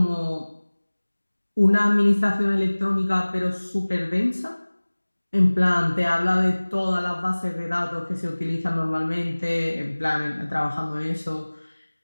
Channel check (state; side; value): inverted; both; correlation -1.00